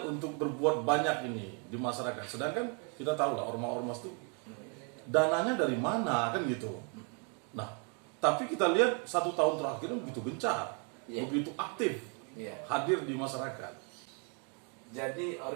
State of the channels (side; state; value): left; quieter; 38.0 dB